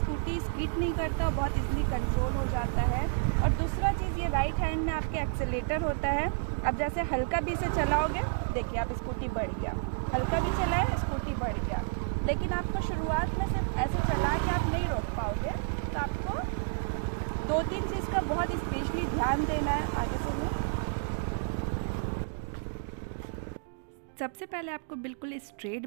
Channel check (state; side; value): silent; left; digital silence